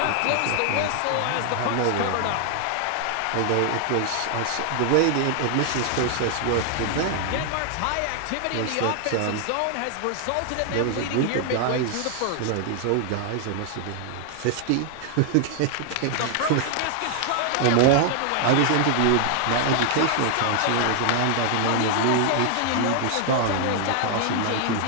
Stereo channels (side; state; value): both; different; correlation 0.00